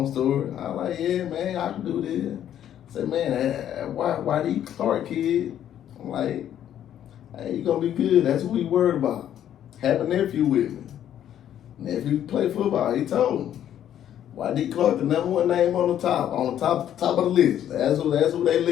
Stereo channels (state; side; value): quieter; right; 10.7 dB